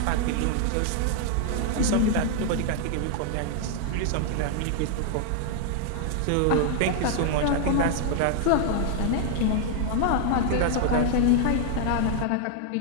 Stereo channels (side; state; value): both; different; correlation 0.00